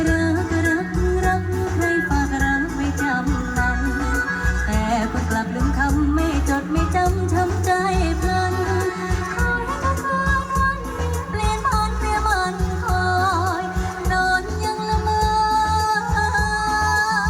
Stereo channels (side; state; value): both; identical; correlation 1.00